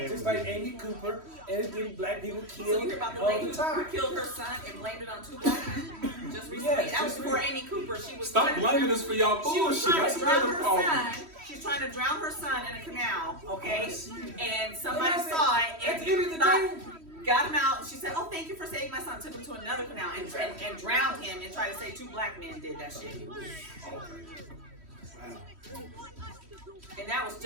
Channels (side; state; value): left; late; 3.1 ms